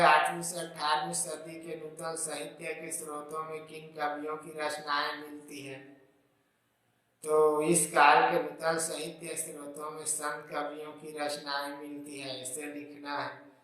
8वीं से 18वीं सदी के नूतन साहित्य के स्रोतों में किन कवियों की रचनाएं मिलती हैं। तो इस काल के नूतन साहित्य स्रोतों में संत कवियों की रचनाएं मिलती है, इसे लिखना है।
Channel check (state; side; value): identical; both; correlation 1.00